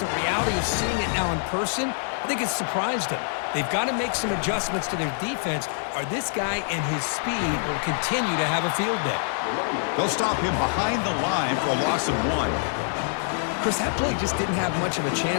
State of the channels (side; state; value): right; silent; digital silence